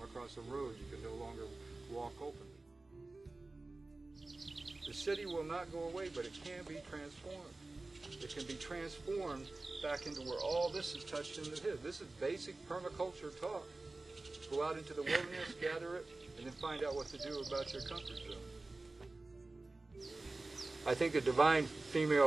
across a road you can no longer walk openly. The city will not go away, but it can be transformed. It can be transformed back into where all this is touched into his. This is basic permaculture talk. Go out into the wilderness, gather it, and then find out what to do about your comfort zone. I think the divine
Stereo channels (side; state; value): left; quieter; 3.2 dB